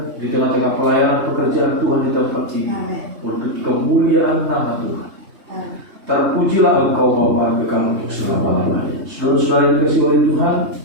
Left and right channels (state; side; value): late; left; 3.2 ms